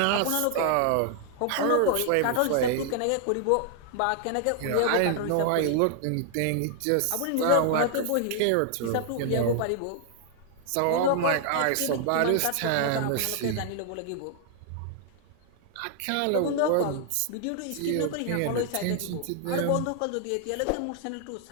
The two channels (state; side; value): different; both; correlation 0.00